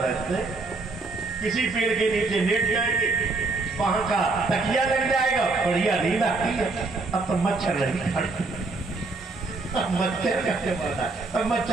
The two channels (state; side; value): quieter; left; 3.6 dB